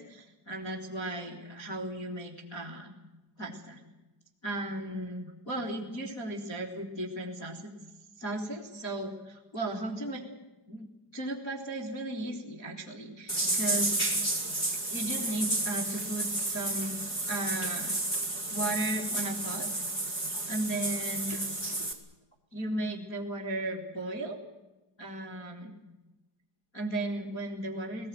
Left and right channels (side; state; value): right; late; 4.7 ms